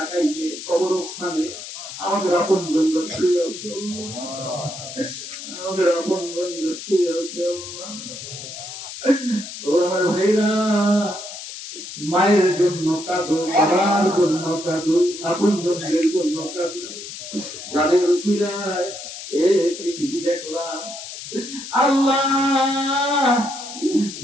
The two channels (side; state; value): left; noise; hiss, 10 dB below the sound